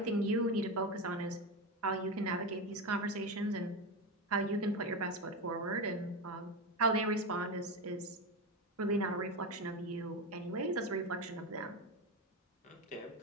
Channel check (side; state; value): both; normal; correlation 0.17